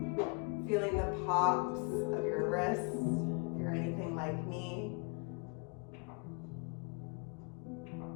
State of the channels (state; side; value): quieter; right; 34.3 dB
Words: Feeling the pops of your wrists if you're anything like me.